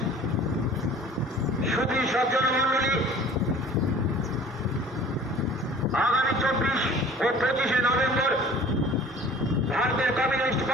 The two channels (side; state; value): both; normal; correlation 0.47